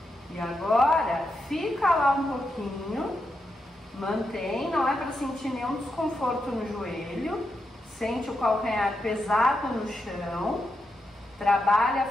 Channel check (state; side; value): normal; both; correlation 0.85